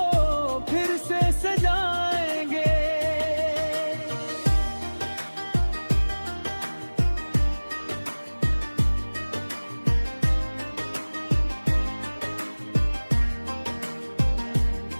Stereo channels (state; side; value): inverted; both; correlation -1.00